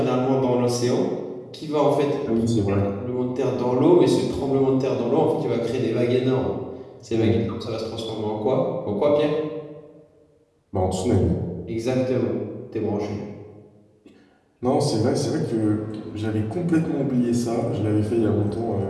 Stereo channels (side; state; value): both; identical; correlation 1.00